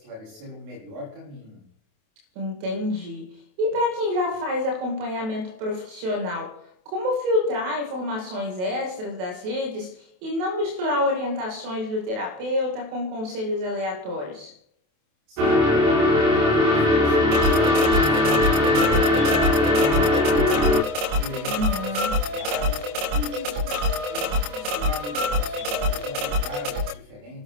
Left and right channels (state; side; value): late; left; 27 ms